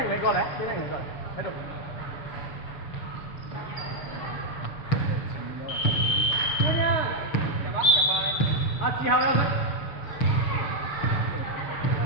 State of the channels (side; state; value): right; late; 7.0 ms